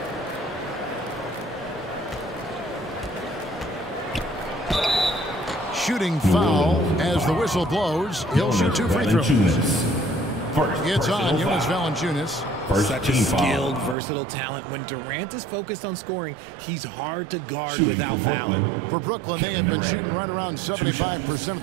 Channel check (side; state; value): left; drops out; at 14.0 s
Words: Shooting foul as the whistle blows. He'll shoot 2 free throws. It's on Jonas Valanciunas. Such a skilled, versatile talent. When Durant is focused on scoring, he's hard to guard without fouling. For Brooklyn, they have been shooting right around 75% at